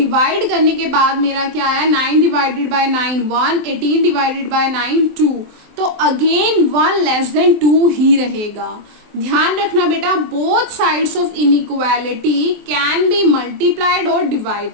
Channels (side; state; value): left; late; 23 ms